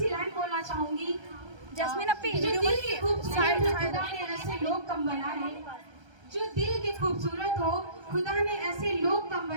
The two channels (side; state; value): left; late; 1.3 ms